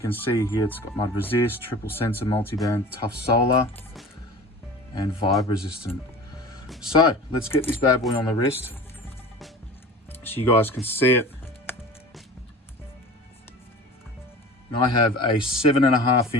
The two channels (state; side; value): normal; both; correlation 0.38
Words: see here it's got mud resist, triple sensor, multiband, tough solar, and vibe resistant. So let's get this bad boy on the wrist so you guys can see it. And I have a